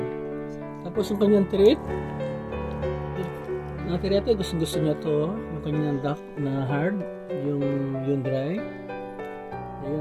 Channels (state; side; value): identical; both; correlation 1.00